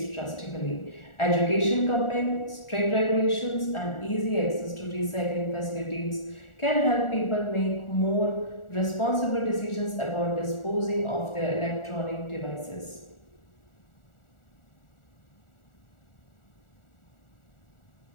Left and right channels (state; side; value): late; right; 1.4 ms